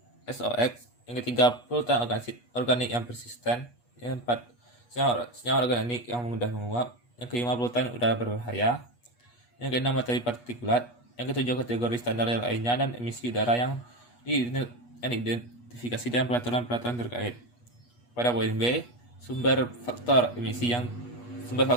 SOX, yang ketiga polutan organik yang persisten, yang keempat senyawa organik yang mudah menguap, yang kelima polutan udara berbahaya, yang keenam materi partikulat, yang ketujuh kategori standar lainnya dan emisi udara yang diidentifikasi dalam peraturan terkait. Pada poin B, sumber faktor emisi yang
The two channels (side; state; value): right; late; 8.3 ms